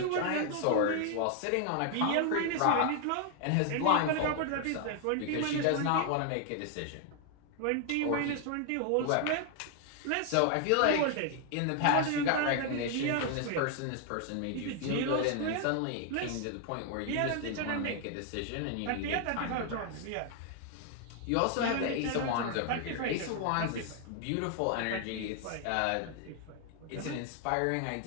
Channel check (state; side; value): different; both; correlation 0.00